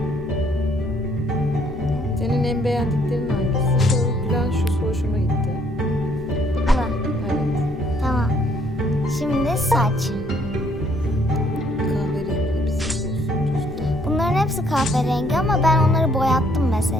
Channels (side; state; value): both; normal; correlation 0.66